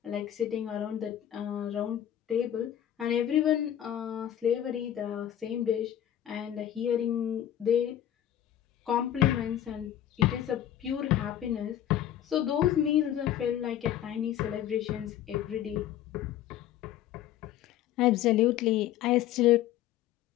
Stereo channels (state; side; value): quieter; right; 11.3 dB